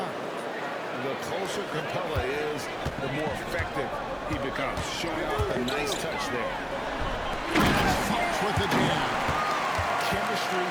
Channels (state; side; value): identical; both; correlation 1.00